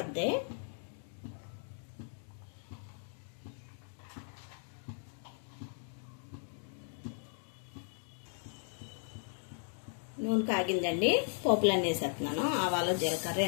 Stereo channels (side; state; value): right; silent; 53 dB below the other